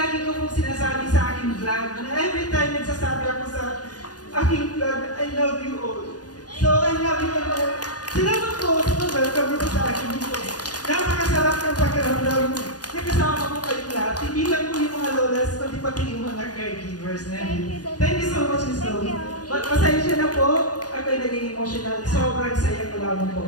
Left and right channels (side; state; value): right; late; 0.68 ms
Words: ko pong sinasabi sa aking vlog, na every time nagsasabi ako sa aking vlog, I love you all. So, I love you all. Salamat po sa welcome nito sa akin dito. Napakasarap ng pakiramdam na kasama ko kayong lahat. Hindi lang po yung mga lolas, kundi pati yung mga caregivers na. Thank you so much, Miss Chloe. Pasensya na po. Ako'y naging emotional. Sobrang saya ko lamang po.